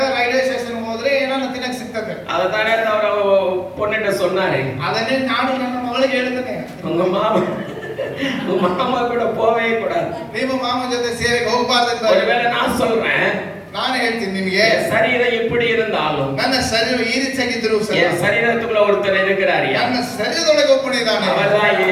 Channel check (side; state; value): both; identical; correlation 1.00